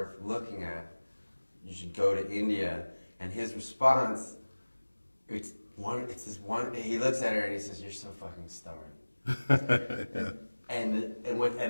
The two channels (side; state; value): both; inverted; correlation -1.00